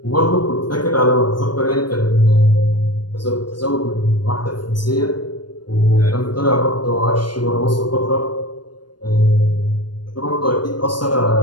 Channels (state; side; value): late; right; 0.71 ms